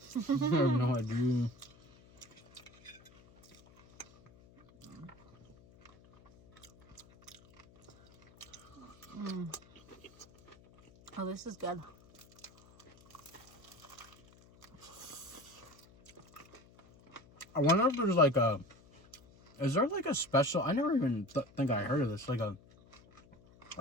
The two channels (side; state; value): left; noise; hum, 25 dB below the sound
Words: I have no idea. Oh, this is good. I wonder if there's like a... Is there like a special... I never even think I heard of this. Like a